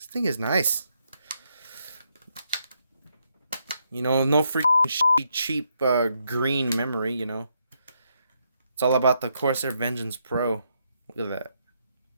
is nice. You know, no freaking cheap green memory, you know. It's all about the Corsair Vengeance Pro. Look at that.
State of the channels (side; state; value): both; inverted; correlation -0.78